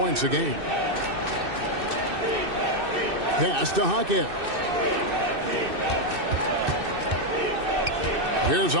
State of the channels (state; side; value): late; left; 2.6 ms